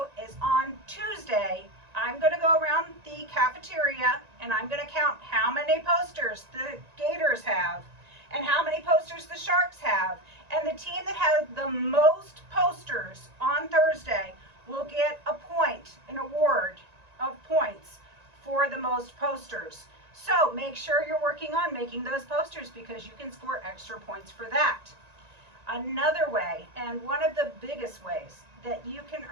is on Tuesday, I'm going to go around the cafeteria and I'm going to count how many posters the Gators have and how many posters the Sharks have. And the team that has the most posters on Thursday will get a point, an award of points for the most posters. So make sure you're working on making those posters because you can score extra points for that. Another way, and one of the biggest ways that you can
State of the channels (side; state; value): left; late; 1.9 ms